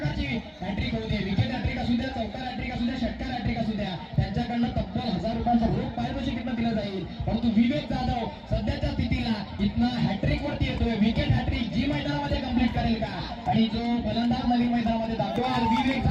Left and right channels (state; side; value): identical; both; correlation 1.00